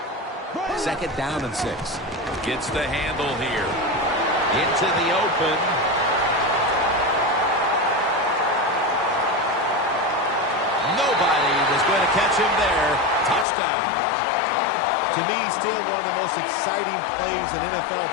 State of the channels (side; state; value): right; drops out; at 13.5 s